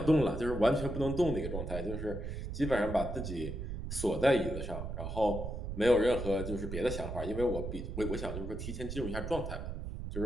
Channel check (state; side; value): noise; right; rumble, 6 dB below the sound